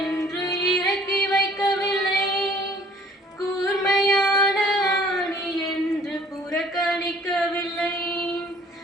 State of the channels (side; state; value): both; normal; correlation 0.55